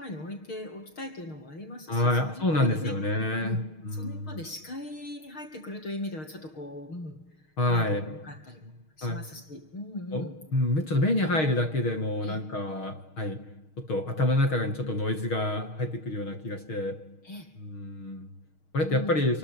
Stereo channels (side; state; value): right; late; 6.4 ms